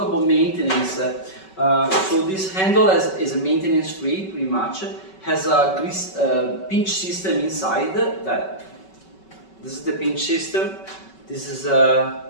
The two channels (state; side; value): late; right; 5.3 ms